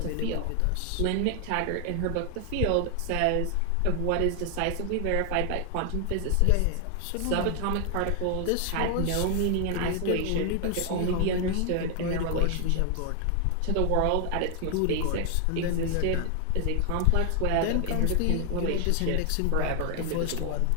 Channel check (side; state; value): both; different; correlation 0.00